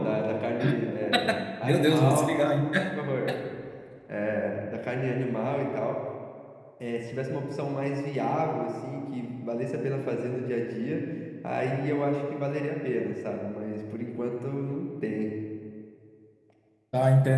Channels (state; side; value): identical; both; correlation 1.00